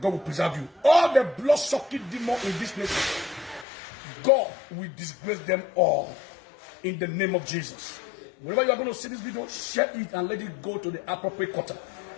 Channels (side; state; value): right; drops out; at 3.7 s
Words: God will preserve you. All the blood-sucking demons in this nation, God will disgrace them all in the name of Jesus. Whenever you are going to see this video, share it and let it go to the appropriate quarter.